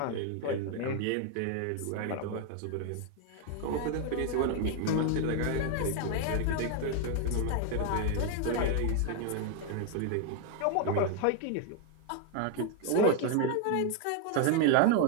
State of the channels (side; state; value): both; different; correlation 0.01